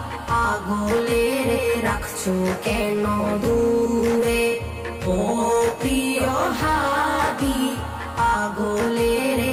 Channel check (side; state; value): both; identical; correlation 1.00